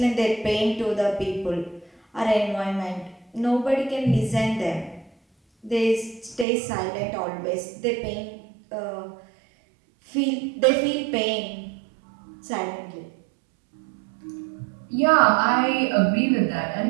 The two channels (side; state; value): left; drops out; at 6.5 s